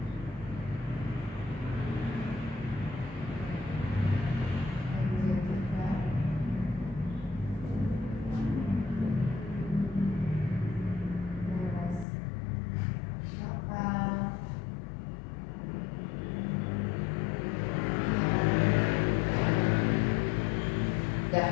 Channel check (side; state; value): right; drops out; at 12.1 s